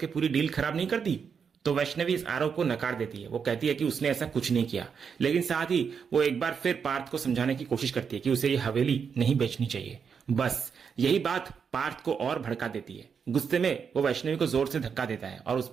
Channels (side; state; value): left; quieter; 6.5 dB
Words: पूरी डील खराब नहीं कर दी। तो वैष्णवी इस आरोप को नकार देती है। वो कहती है कि उसने ऐसा कुछ नहीं किया, लेकिन साथ ही वो एक बार फिर पार्थ को समझाने की कोशिश करती है कि उसे ये हवेली नहीं बेचनी चाहिए। बस यही बात पार्थ को और भड़का देती है। गुस्से में वो वैष्णवी को जोर से धक्का देता है और उस